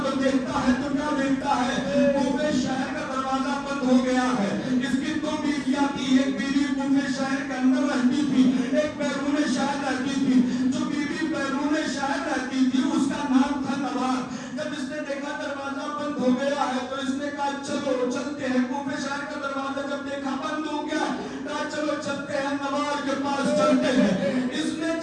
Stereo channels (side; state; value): both; identical; correlation 1.00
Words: تو دیکھتا ہے تو کیا دیکھتا ہے؟ کوفے شہر کا دروازہ بند ہو گیا ہے۔ اس کی 2 بیویاں تھی، ایک بیوی کوفے شہر کے اندر رہتی تھی، ایک بیرون شہر رہتی تھی۔ جو بیوی بیرون شہر رہتی تھی اس کا نام تھا نوار۔ جب اس نے دیکھا دروازہ بند ہو گیا ہے تو اس نے کہا چلو چلتے ہیں۔ کوفے شہر کا دروازہ جب دیکھا بند ہو گیا ہے، کہا چلو چلتے ہیں، نوار کے پاس چلتے ہیں۔ اس نے